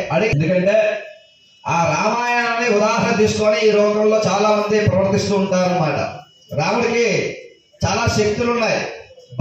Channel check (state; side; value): identical; both; correlation 1.00